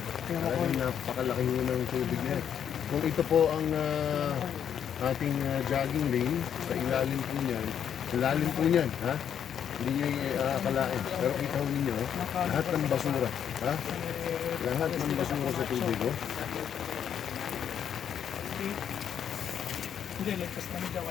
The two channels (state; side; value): quieter; right; 8.7 dB